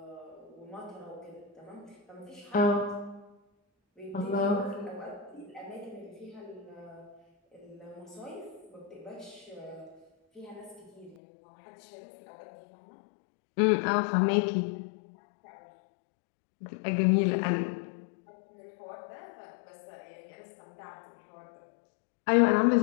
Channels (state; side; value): drops out; right; at 11.2 s